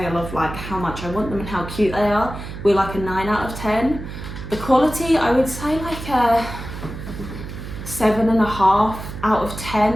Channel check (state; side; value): noise; right; hum, 10 dB below the sound